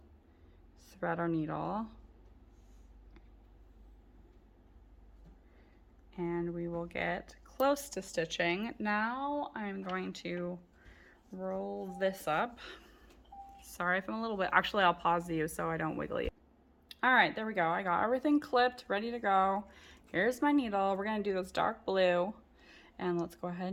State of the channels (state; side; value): identical; both; correlation 1.00